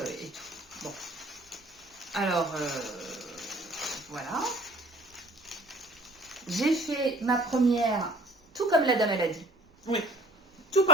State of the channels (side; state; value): both; normal; correlation 0.45